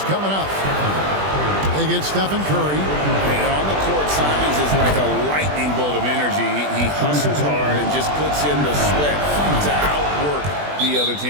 coming up. They get Stephen Curry. And on the court, Simons is like a lightning bolt of energy. He hustles hard and just puts in the sweat to outwork the other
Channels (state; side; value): late; left; 20 ms